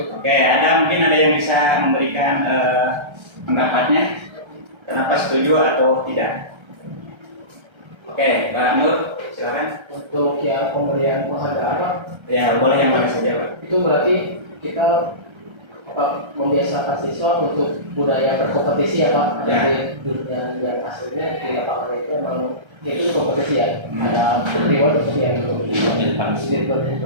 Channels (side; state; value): left; late; 1.3 ms